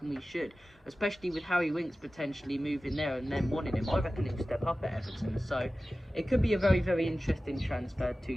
we should, especially with Harry Winks potentially moving there and then wanting him. I reckon he'll step up at Everton, so it could be a very, very interesting transfer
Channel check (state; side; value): normal; both; correlation 0.96